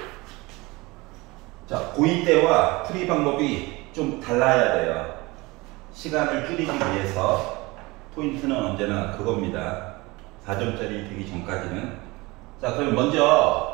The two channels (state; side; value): quieter; left; 23.1 dB